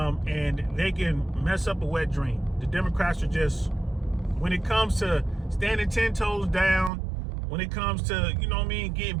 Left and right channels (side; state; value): left; drops out; at 6.9 s